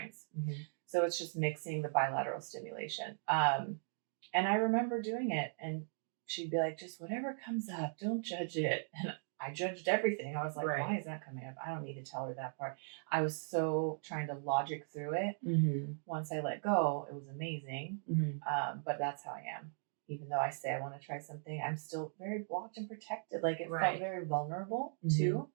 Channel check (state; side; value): silent; left; digital silence